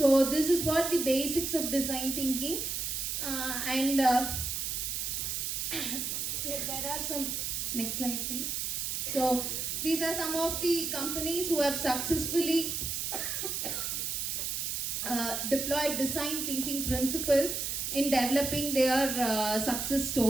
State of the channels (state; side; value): noise; right; hiss, 2 dB below the sound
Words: this is what the basics of design thinking. There are some, next slide please. So these are some of the companies who have successfully deployed design thinking principles in developing their success